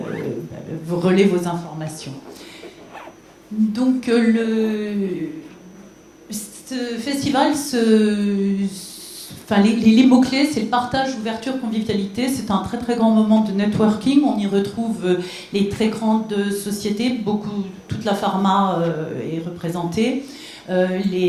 vous relaient vos informations. Donc, ce festival, les mots-clés, c'est le partage, ouverture, convivialité. C'est un très très grand moment de networking. On y retrouve les très grandes sociétés, toute la pharma est représentée,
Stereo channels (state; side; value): identical; both; correlation 1.00